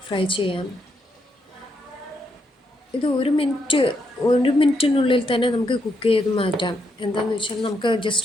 ഫ്രൈ ചെയ്യാം. ഇത് 1 മിനിറ്റിനുള്ളിൽ തന്നെ നമുക്ക് കുക്ക് ചെയ്ത് മാറ്റാം. എന്താണെന്ന് വെച്ചാൽ നമുക്ക്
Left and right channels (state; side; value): normal; both; correlation 0.78